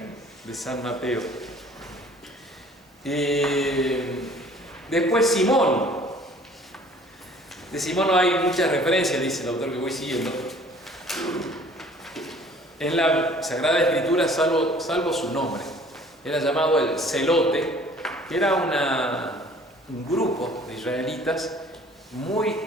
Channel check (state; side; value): normal; both; correlation 0.53